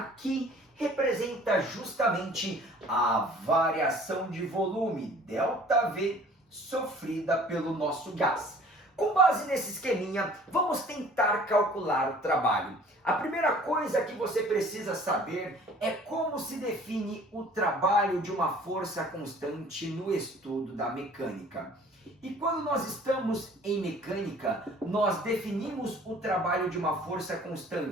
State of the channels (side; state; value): both; normal; correlation 0.50